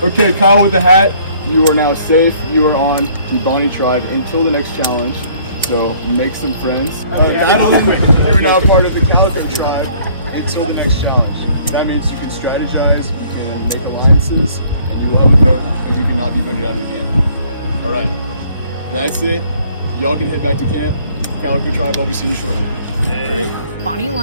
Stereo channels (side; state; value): both; inverted; correlation -0.59